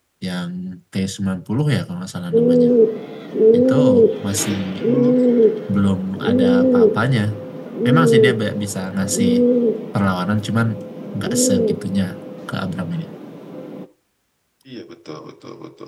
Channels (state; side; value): identical; both; correlation 1.00